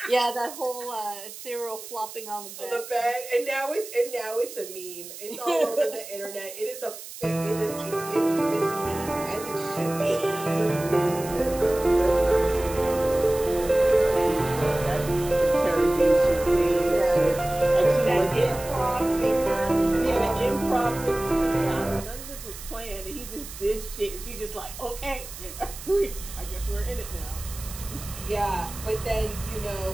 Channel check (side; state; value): right; noise; hiss, 13 dB below the sound